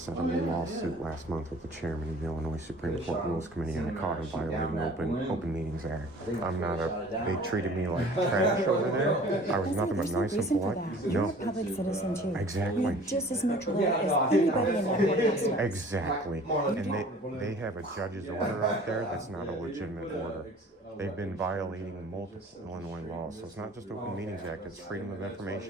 set up a lawsuit last month with the chairman of the Illinois Supreme Court Rules Committee, and I caught him violating Open Meetings Act. They treated me like trash over there. I was nothing but nice and polite. You're a public citizen too. Exactly. You have just as much right as anybody in that courthouse does. Exactly. And they have a judge's order out there that's not a legitimate order. They've been violating multiple Illinois laws. So it's not just Open Meetings Act, it's Freedom of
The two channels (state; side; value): normal; both; correlation 0.48